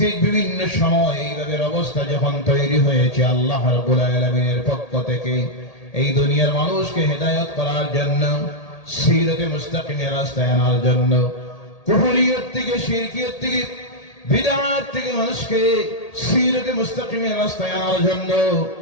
বিভিন্ন সময় এইভাবে অবস্থা যখন তৈরি হয়েছে, আল্লাহ রাব্বুল আলামিনের পক্ষ থেকে এই দুনিয়ার মানুষকে হেদায়েত করার জন্য, সিরাতে মুস্তাকিমের রাস্তায় আনার জন্য, কুফরিয়ত থেকে, শিরকিয়ত থেকে, বিদআত থেকে মানুষকে সিরাতে মুস্তাকিমের রাস্তায় আনার জন্য,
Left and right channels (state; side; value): late; right; 1.8 ms